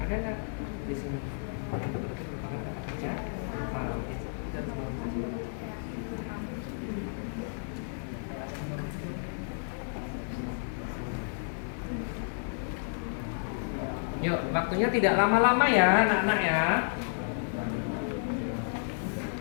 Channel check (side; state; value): right; silent; digital silence